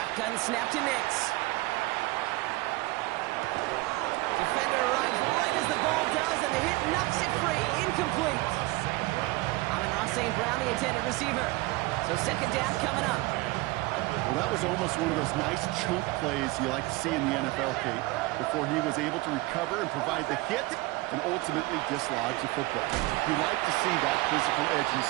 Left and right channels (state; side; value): quieter; left; 21.6 dB